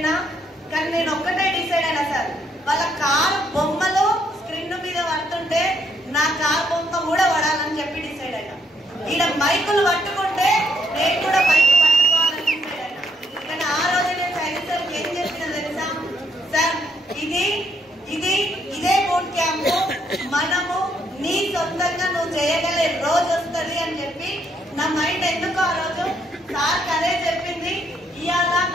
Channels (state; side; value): normal; both; correlation 0.73